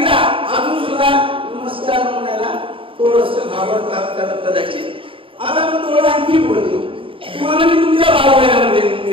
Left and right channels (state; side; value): late; left; 0.26 ms